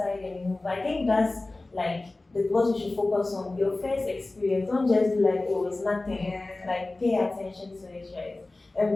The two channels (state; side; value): quieter; right; 3.0 dB